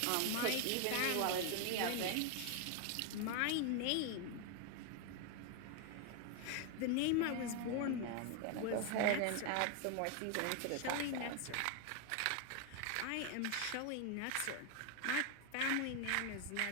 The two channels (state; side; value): different; both; correlation 0.01